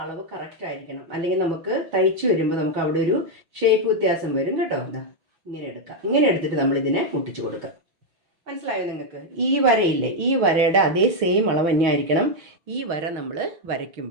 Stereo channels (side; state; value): left; late; 5.8 ms